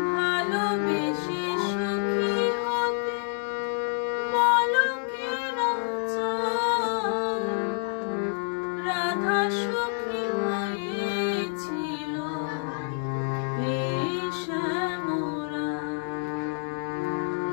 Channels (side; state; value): right; silent; 58 dB below the other